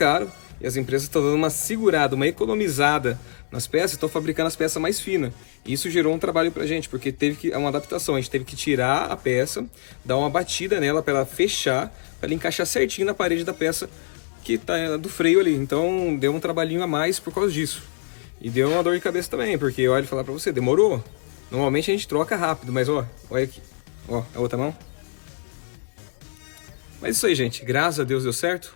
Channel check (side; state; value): right; silent; digital silence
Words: e as empresas estão dando uma segurada, uma economizada nas peças, estão fabricando as peças mais finas. Isso gerou um trabalho pra gente, porque teve uma adaptação. A gente teve que tirar a peça, dar uma batida nela para ela fechar, para ela encaixar certinho na parede da peça que tá do freio ali. Então deu um trabalhinho a mais por causa disso. E deu uma dor de cabeça também, porque olha, falar pra você, demorou. Normalmente a gente troca rápido, mas ó, olha aqui. Ó, a outra mão. Mas isso aí, gente. Graças a Deus deu certo.